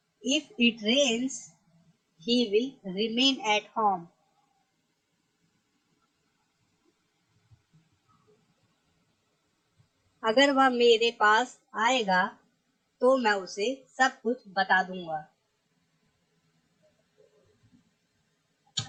If it rains he will remain at home. अगर वह मेरे पास आएगा तो मैं उसे सब कुछ बता दूंगा।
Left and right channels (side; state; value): both; identical; correlation 1.00